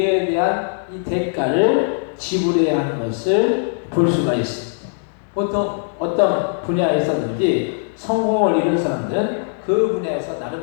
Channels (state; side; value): silent; right; 66 dB below the other